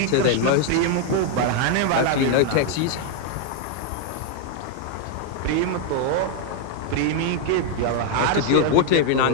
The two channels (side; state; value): both; different; correlation 0.00